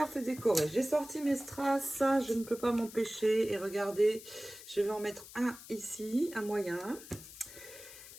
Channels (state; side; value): noise; left; hiss, 16 dB below the sound